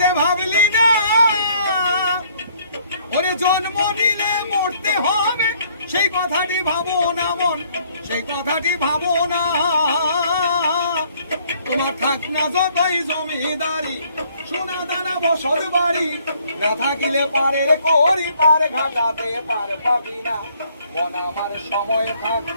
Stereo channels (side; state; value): both; inverted; correlation -0.63